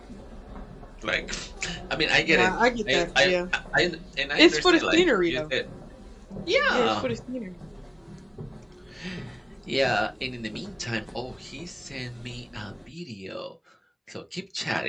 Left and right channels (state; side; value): identical; both; correlation 1.00